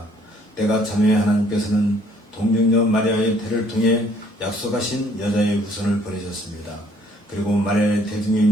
때가 참에 하나님께서는 동정녀 마리아의 태를 통해 약속하신 여자의 후손을 보내셨습니다. 그리고 마리아의 태중에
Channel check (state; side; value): normal; both; correlation 0.62